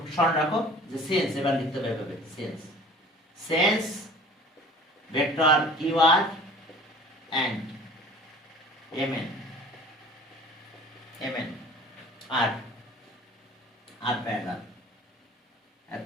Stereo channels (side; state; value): both; normal; correlation 0.45